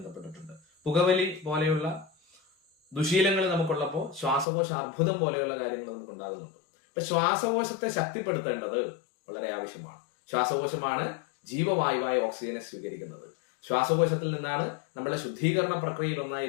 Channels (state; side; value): drops out; right; at 4.5 s